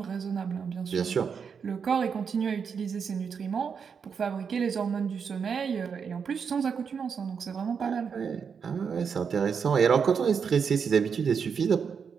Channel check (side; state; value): left; quieter; 6.4 dB